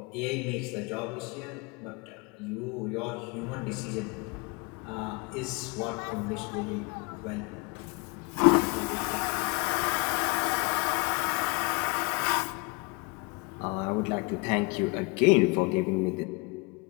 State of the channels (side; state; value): right; quieter; 29.0 dB